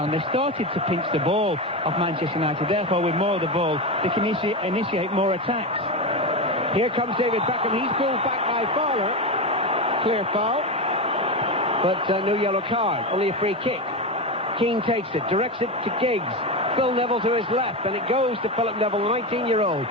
they've started to pinch the ball off Manchester United. Therefore, with more of the ball, they can initiate more attacks. Here comes David Beckham. He's pulled back by Fowler. Clear foul. But no yellow card. Only a free kick. Keane takes it. Directs it to Giggs. Phil Neville to his left. And it goes to Philip Neville, the 19-year-old.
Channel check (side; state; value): both; normal; correlation 0.17